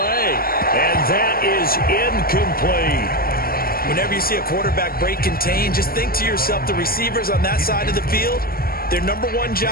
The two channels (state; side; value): late; right; 0.43 ms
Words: that is incomplete. Whenever you see a quarterback break contain, just think to yourself, the receivers on that side of the field, their number one